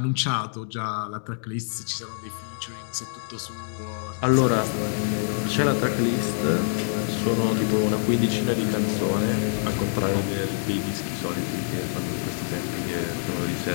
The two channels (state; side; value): silent; right; digital silence